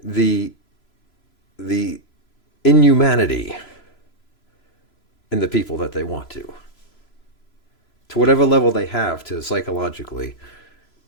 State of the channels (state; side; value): late; right; 3.0 ms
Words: inhumanity in the people that they want to whatever level they have to psychologically